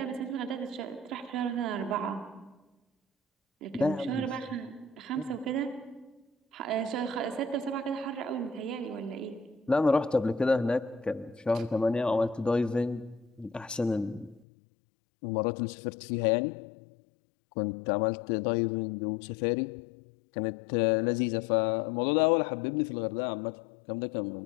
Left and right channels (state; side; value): drops out; right; at 14.5 s